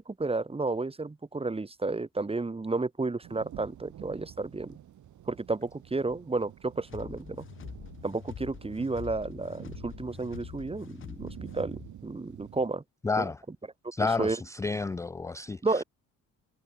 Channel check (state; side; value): normal; both; correlation 0.64